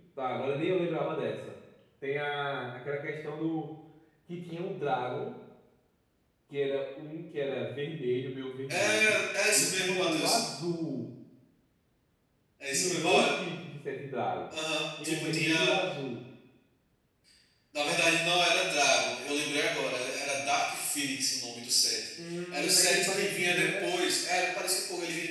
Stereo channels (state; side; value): identical; both; correlation 1.00